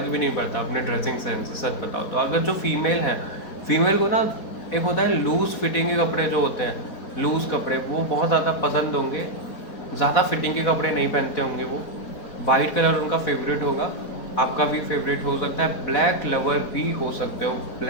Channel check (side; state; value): right; late; 4.1 ms